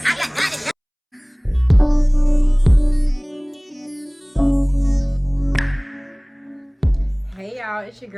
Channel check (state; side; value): identical; both; correlation 1.00